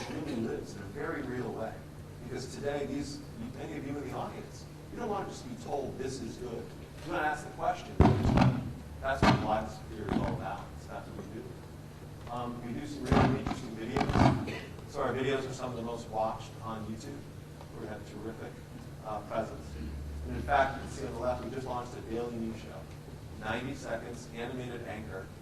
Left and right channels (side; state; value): both; identical; correlation 1.00